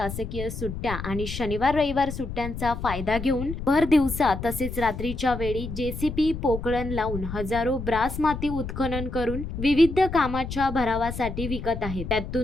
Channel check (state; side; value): noise; left; rumble, 7 dB below the sound